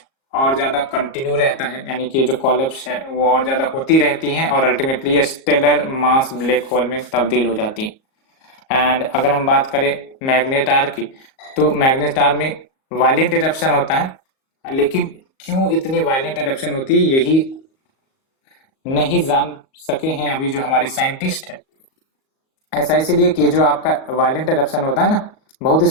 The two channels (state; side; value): late; right; 38 ms